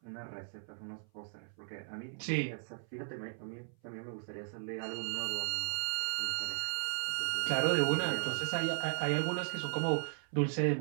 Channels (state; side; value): silent; left; 54 dB below the other